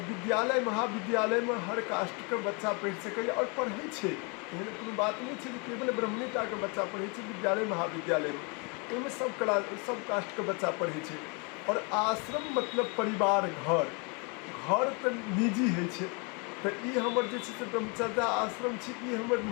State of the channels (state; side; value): quieter; right; 32.7 dB